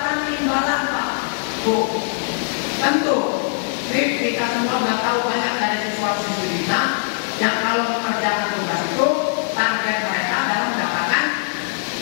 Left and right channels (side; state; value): right; silent; 65 dB below the other